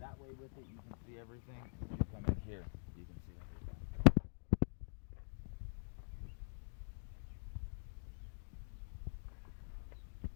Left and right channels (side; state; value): right; silent; digital silence